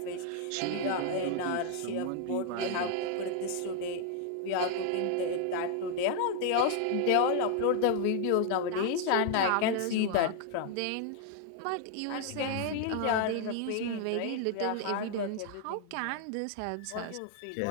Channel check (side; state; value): both; different; correlation 0.00